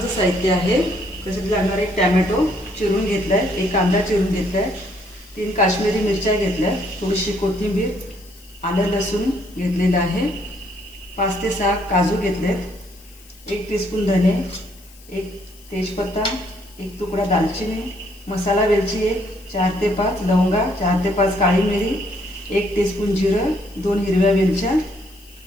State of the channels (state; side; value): noise; left; hiss, 24 dB below the sound